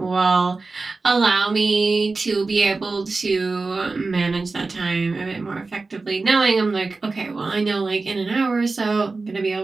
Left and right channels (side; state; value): left; quieter; 3.8 dB